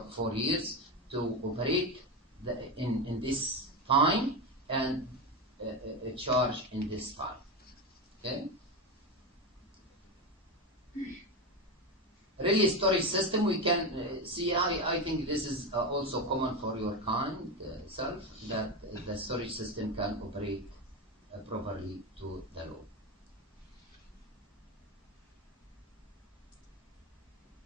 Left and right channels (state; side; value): normal; both; correlation 0.16